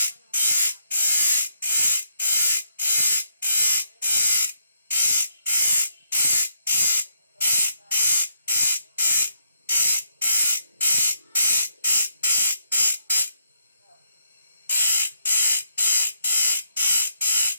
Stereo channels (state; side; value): inverted; both; correlation -0.75